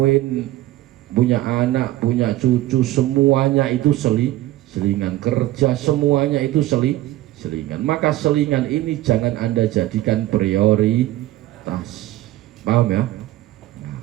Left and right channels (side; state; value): left; quieter; 15.6 dB